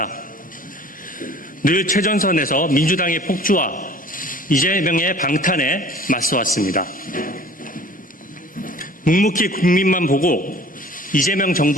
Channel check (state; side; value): normal; both; correlation 0.47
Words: 늘 최전선에서 민주당의 폭주와 이재명의 방탄에 맞서왔습니다. 묵묵히 국민만 보고 이재명